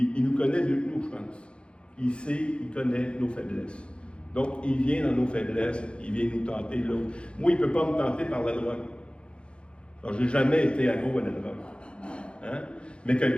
il nous connaît mieux que nous, je pense. Il sait, il connaît nos faiblesses. Donc, il vient dans nos faiblesses, il vient nous tenter là. Moi, il ne peut pas me tenter par la drogue. Alors, je n'ai jamais été accro à la drogue. Hein? Mais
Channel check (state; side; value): late; right; 0.057 ms